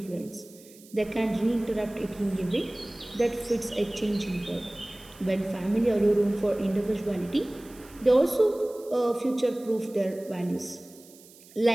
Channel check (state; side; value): noise; right; hiss, 23 dB below the sound